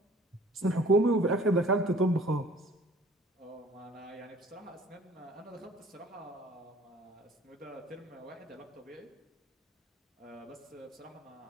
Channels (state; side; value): normal; both; correlation 0.51